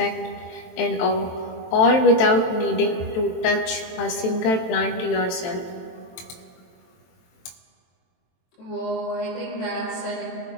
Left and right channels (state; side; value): late; right; 23 ms